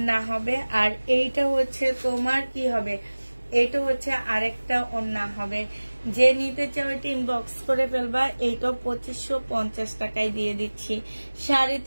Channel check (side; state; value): both; inverted; correlation -1.00